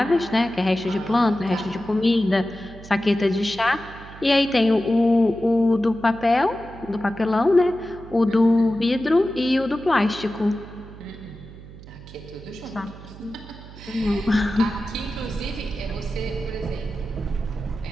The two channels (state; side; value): noise; right; hum, 17 dB below the sound